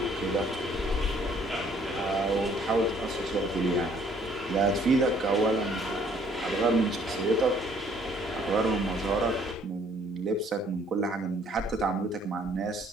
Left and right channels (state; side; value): normal; both; correlation 0.61